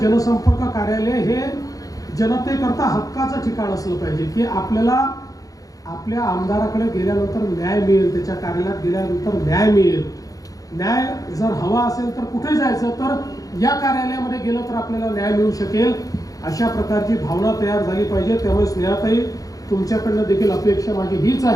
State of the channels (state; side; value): late; right; 0.17 ms